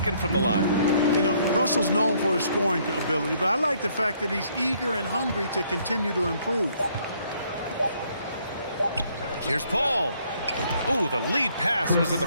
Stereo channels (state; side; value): inverted; both; correlation -0.67